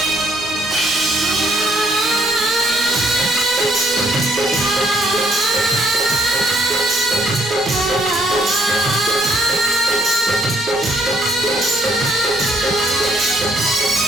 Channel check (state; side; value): normal; both; correlation 0.68